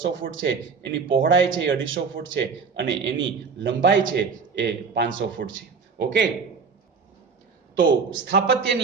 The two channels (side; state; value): left; quieter; 5.3 dB